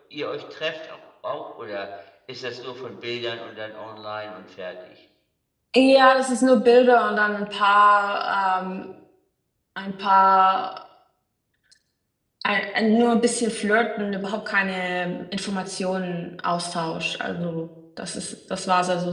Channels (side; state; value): both; identical; correlation 1.00